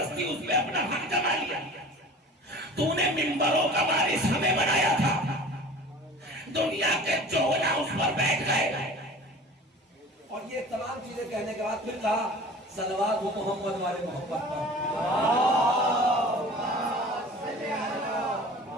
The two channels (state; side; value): normal; both; correlation 0.42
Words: اس پہ اپنا حق جما لیا، تو نے منبروں کا وارث ہمیں بنایا تھا، دنیا کے چولا اس پر بیٹھ گئے۔ اور یہ تمام چیزیں کہنے کے بعد پھر کہا صلوات ہو محمد والے محمد پر۔